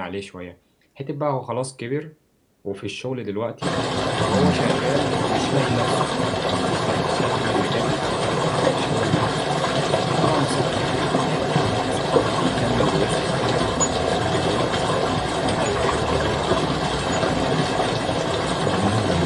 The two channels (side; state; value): both; identical; correlation 1.00